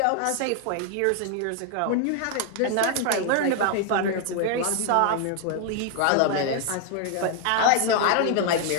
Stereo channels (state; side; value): different; both; correlation 0.00